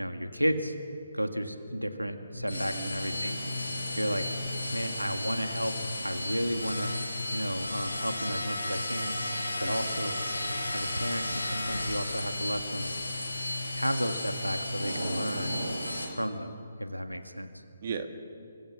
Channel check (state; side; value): inverted; both; correlation -0.92